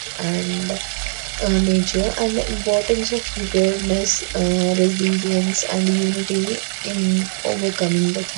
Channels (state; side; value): silent; left; 58 dB below the other